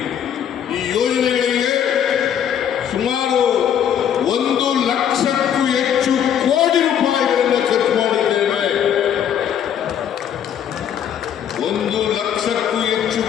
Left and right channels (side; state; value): right; quieter; 9.2 dB